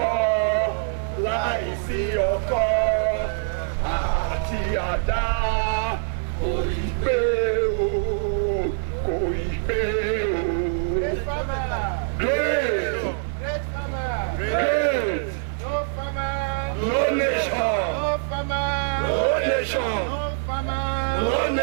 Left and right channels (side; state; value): left; silent; digital silence